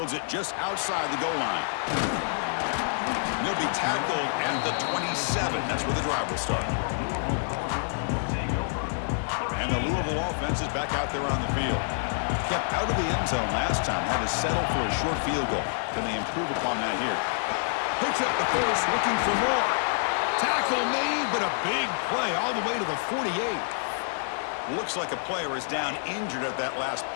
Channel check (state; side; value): silent; right; digital silence